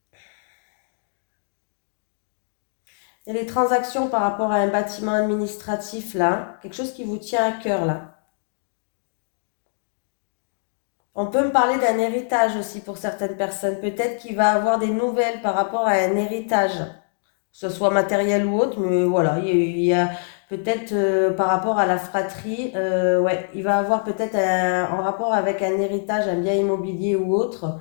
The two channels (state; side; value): silent; right; digital silence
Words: Il y a des transactions par rapport à un bâtiment administratif là, quelque chose qui vous tient à cœur là. On peut me parler d'un héritage aussi pour certaines personnes. Peut-être qu'il va avoir des nouvelles par rapport à un héritage, que ce soit matériel ou autre, mais voilà, il y a peut-être par rapport à la fratrie, ouais, il va avoir peut-être en rapport avec un héritage, un bien immobilier ou autre,